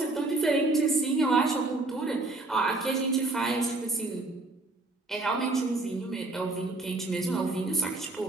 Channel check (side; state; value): left; quieter; 3.0 dB